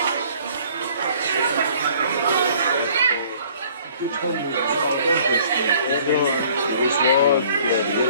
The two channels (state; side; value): inverted; both; correlation -0.55